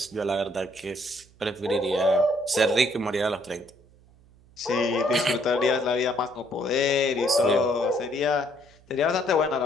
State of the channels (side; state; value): right; noise; hum, 28 dB below the sound